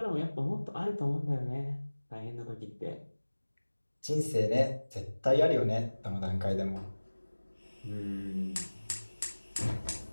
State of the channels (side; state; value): both; inverted; correlation -1.00